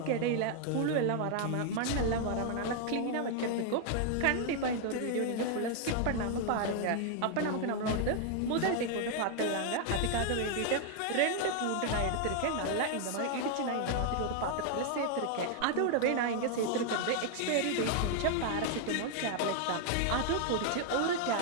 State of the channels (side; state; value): both; different; correlation 0.00